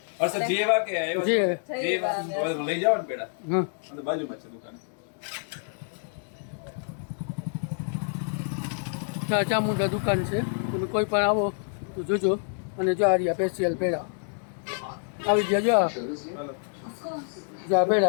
અરસદ જેવા કે આવ્યો છે? જેવા. જેવા. લઈ જાવ ને પેડા. હા અને બાજુમાં છે દુકાન. ચામુંડા દુકાન છે. તમે કોઈ પણ આવો તો જોજો. અને જો આ રહ્યા સ્પેશિયલ પેડા આવી ગયા. જો જો આ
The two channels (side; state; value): right; silent; 60 dB below the other